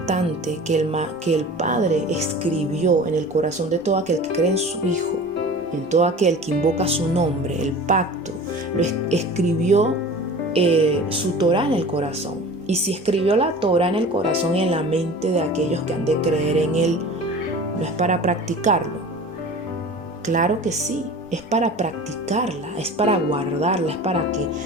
que el Padre escribió en el corazón de todo aquel que cree en su Hijo, en todo aquel que invoca su nombre, el pacto, lo escribió su Torah en el corazón. Y si escribió la Torah en el corazón y en la mente de aquellos que han de creer en Él, ¿no es para practicarlo? Claro que sí, es para practicarla, es para guardarla, es para que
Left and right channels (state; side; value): normal; both; correlation 0.39